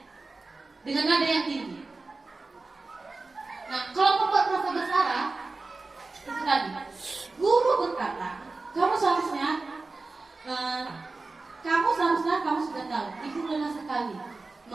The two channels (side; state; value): left; quieter; 3.6 dB